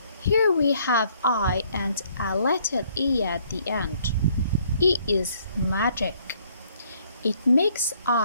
here we have I and a letter E at the end. E is magic. It makes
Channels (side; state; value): both; inverted; correlation -0.65